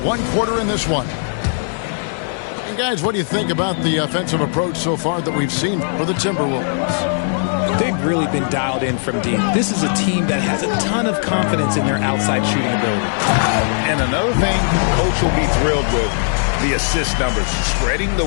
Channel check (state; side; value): silent; right; digital silence